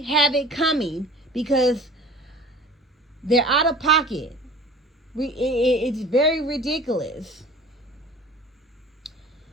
have it coming because they're out of pocket. It's very ridiculous.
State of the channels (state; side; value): normal; both; correlation 0.43